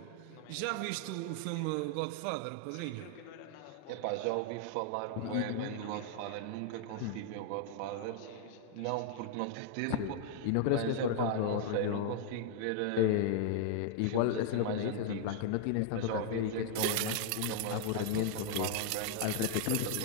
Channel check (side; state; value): both; different; correlation 0.00